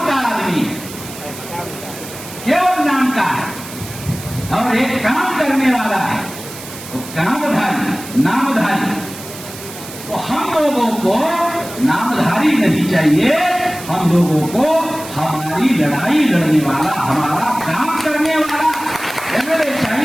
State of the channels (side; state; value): right; noise; hiss, 14 dB below the sound